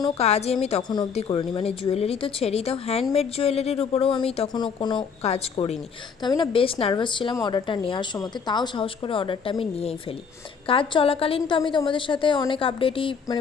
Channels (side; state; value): right; quieter; 6.1 dB